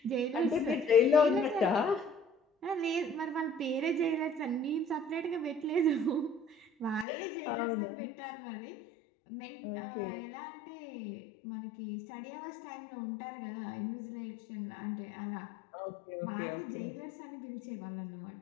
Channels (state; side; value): drops out; right; at 7.1 s